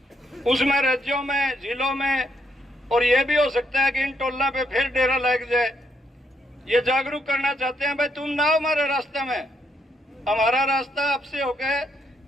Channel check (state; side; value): normal; both; correlation 0.76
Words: उसमें राज्यों में, जिलों में, और ये भी हो सकता है कि इन टोलों पे फिर डेरा लग जाए। ये जागरूक करना चाहते हैं, भाई तुम ना हो हमारे रास्ते में, हमारा रास्ता आपसे होकर